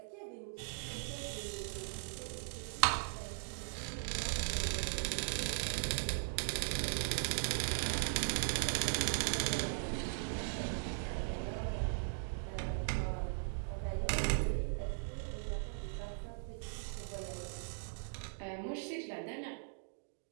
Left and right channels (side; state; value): left; silent; digital silence